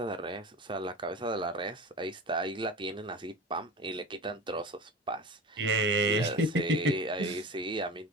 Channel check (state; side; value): normal; both; correlation 0.33